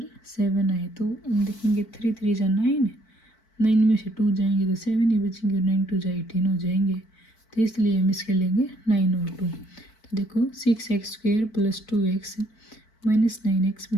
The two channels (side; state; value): right; late; 4.5 ms